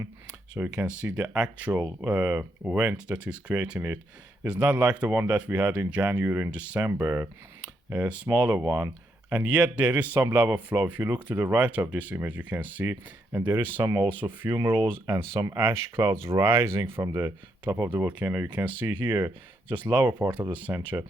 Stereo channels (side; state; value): both; normal; correlation 0.78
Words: so you can see the actual vent that is creating it. It's not like the one that we had in January and December, a smaller one. And yet there is some lava flow. If you look to the right of this image, you can see, and there is some also fumaroles and some ash clouds rising from the top of the volcano. You can see here, just lower part of the center.